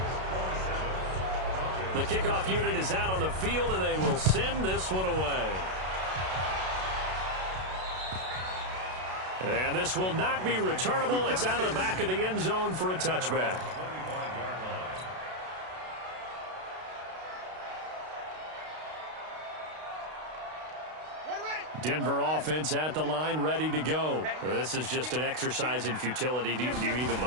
The kickoff unit is out on the field, and they will send this one away. And this will not be returnable. It's out of the back of the end zone for a touchback. Denver offense at the line, ready to go. This is just an exercise in futility. Do you even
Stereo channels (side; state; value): left; late; 32 ms